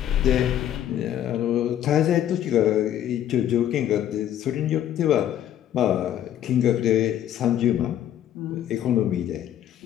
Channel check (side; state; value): right; quieter; 11.1 dB